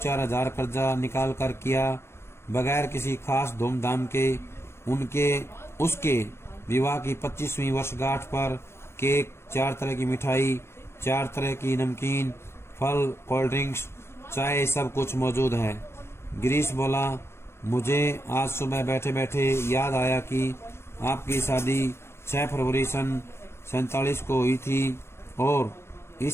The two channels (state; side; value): late; right; 0.12 ms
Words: हजार कर्जा निकाल कर किया बगैर किसी खास धूमधाम के, उसके विवाह की 25वीं वर्षगांठ पर केक, 4 तरह की मिठाई, 4 तरह की नमकीन, फल, कोल्ड ड्रिंक्स, चाय, सब कुछ मौजूद है। गिरीश बोला, मुझे आज सुबह बैठे बैठे याद आया कि आपकी शादी 6 फरवरी सन 47 को हुई थी और